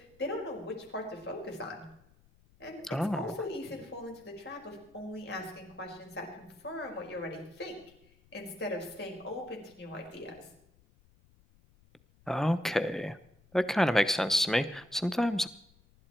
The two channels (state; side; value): noise; left; rumble, 29 dB below the sound